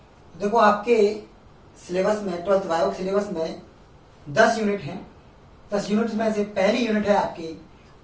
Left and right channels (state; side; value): identical; both; correlation 1.00